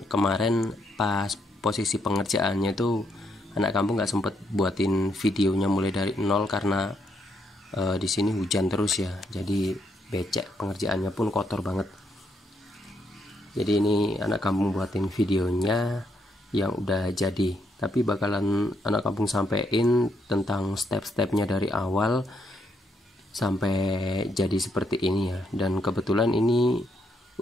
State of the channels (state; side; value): normal; both; correlation 0.76